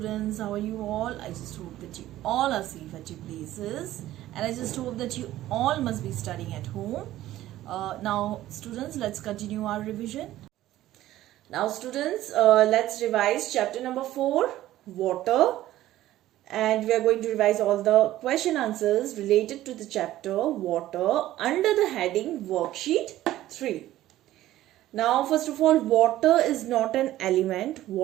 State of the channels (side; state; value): left; quieter; 14.5 dB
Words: how are you all? I just hope that you all are safe at your places, and I just hope that you all must be studying at home. Now students, let's continue our revision. Now students, let's revise chapter number 4, water, and we are going to revise all the question answers related to the chapter water under the heading worksheet 3. Now first of all, water is not an element,